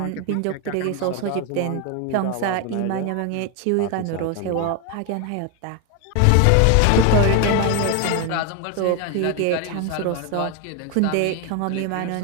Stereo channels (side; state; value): both; different; correlation 0.01